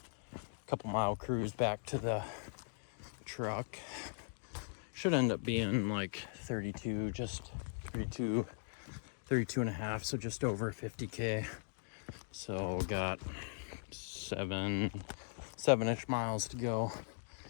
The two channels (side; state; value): right; silent; digital silence